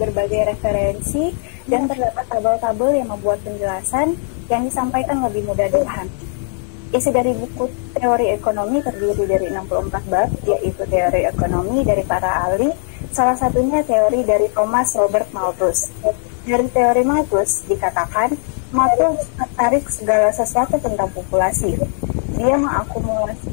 referensi, dan terdapat tabel-tabel yang membuat penjelasan yang disampaikan lebih mudah dipahami. Isi dari buku teori ekonomi terdiri dari 64 bab, yaitu teori ekonomi dari para ahli, salah satunya teori dari Thomas Robert Malthus. Dari teori Malthus dikatakan, Malthus tertarik segala sesuatu tentang populasi. Dia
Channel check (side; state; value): right; silent; 57 dB below the other